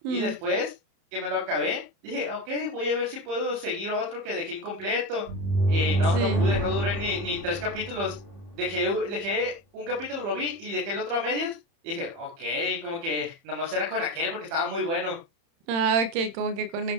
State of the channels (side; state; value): left; late; 30 ms